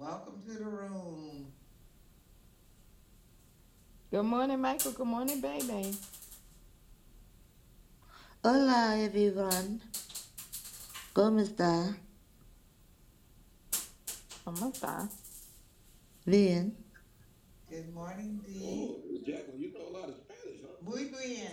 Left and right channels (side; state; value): both; identical; correlation 1.00